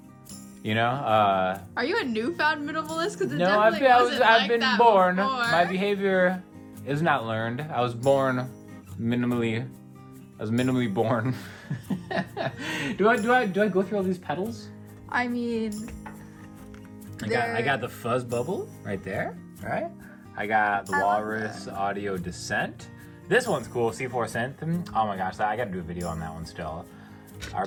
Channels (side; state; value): both; identical; correlation 1.00